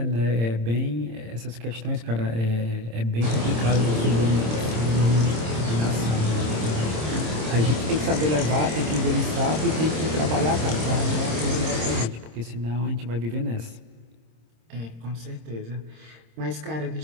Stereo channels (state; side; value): late; left; 26 ms